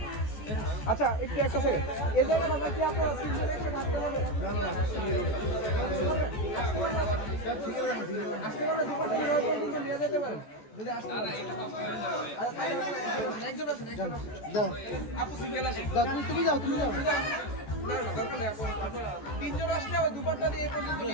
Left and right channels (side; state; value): right; late; 14 ms